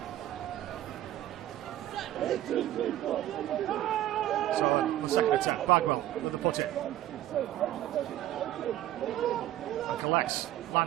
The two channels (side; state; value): left; quieter; 13.7 dB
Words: So the second attempt, Bagwell with the put in. And collects